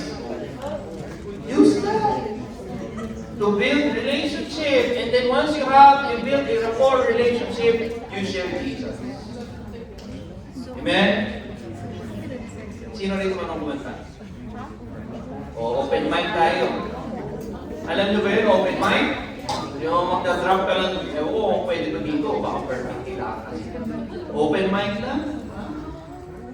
Use that to build relationship. And then once you build a rapport relationship, you share Jesus. Amen? Sino rin man ang kumanta? O, open mic tayo. Alam nyo ba yun, open mic? Yung magda-drop ka lang, oo, pwede ba dito? Baka perfect nila. Open mic lang.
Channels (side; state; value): both; identical; correlation 1.00